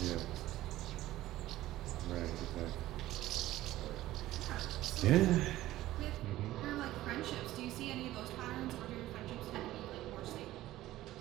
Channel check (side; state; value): left; quieter; 15.5 dB